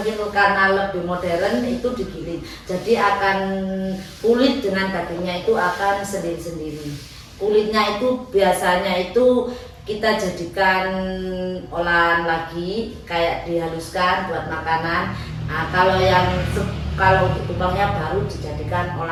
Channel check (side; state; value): both; identical; correlation 1.00